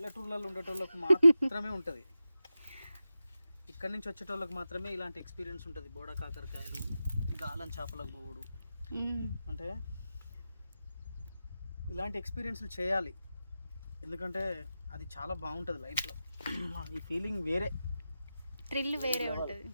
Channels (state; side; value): inverted; both; correlation -0.91